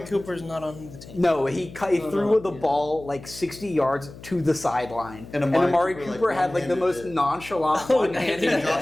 Cooper's not on the team. No, he threw the ball like 60 yards to the sideline, And and Amari Amari Cooper, Cooper had like the one-handed most it. nonchalant And one-handed.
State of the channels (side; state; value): left; noise; hum, 17 dB below the sound